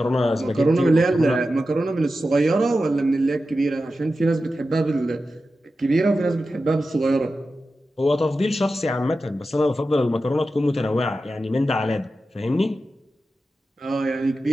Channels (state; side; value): normal; both; correlation 0.92